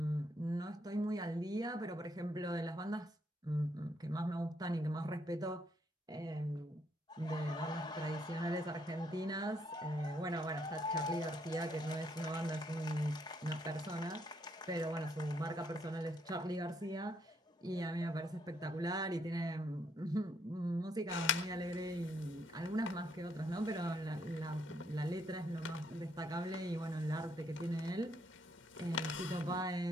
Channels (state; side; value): normal; both; correlation 0.73